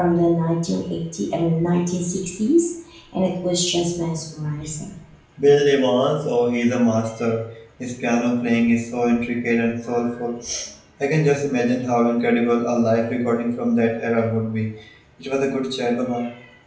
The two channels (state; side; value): identical; both; correlation 1.00